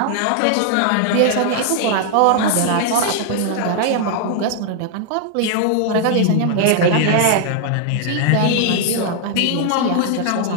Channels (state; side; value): different; both; correlation 0.00